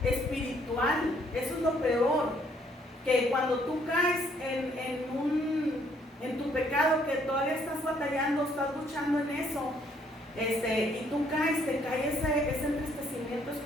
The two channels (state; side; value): normal; both; correlation 0.66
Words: espiritual. Eso es lo peor, que cuando tú caes en tu pecado, que todavía estás batallando, estás luchando en eso, y tú caes, te cae ese entristecimiento